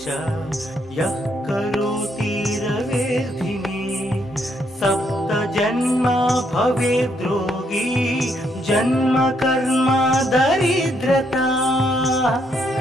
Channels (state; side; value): normal; both; correlation 0.74